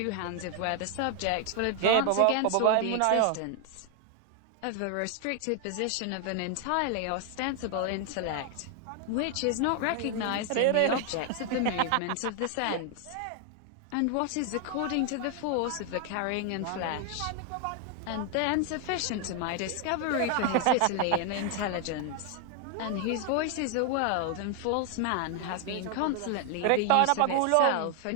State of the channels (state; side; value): different; both; correlation 0.00